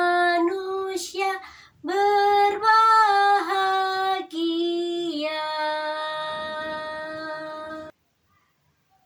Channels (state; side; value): identical; both; correlation 1.00